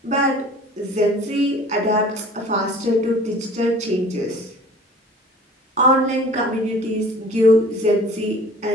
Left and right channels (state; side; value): normal; both; correlation 0.46